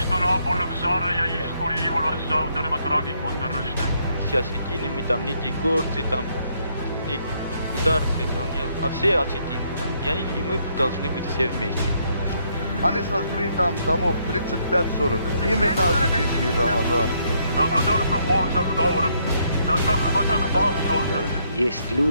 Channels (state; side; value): inverted; both; correlation -0.72